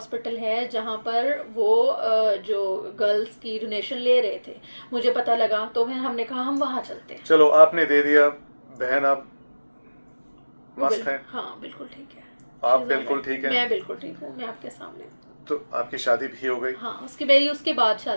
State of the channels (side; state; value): both; inverted; correlation -1.00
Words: है जहाँ पर वो जो गर्ल्स की डोनेशन ले रहे थे, मुझे पता लगा, तो फिर हमने कहा हम वहाँ चलते हैं। चलो, आपने दे दिया, बहन आप मस्त हैं। हाँ, बिल्कुल ठीक है। आप बिल्कुल ठीक है। मैं बिल्कुल ठीक हूँ, मैं आपके सामने। तो आपकी शादी भी हो गई? हाँ, मेरी उसके बाद